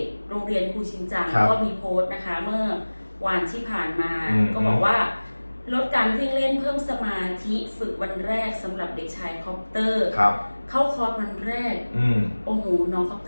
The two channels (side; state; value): both; inverted; correlation -1.00